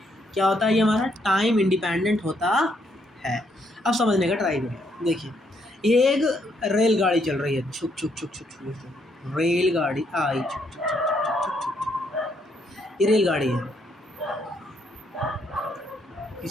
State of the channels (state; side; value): normal; both; correlation 0.73